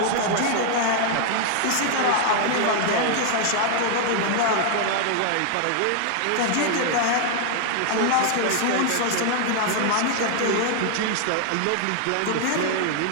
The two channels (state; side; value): different; both; correlation 0.00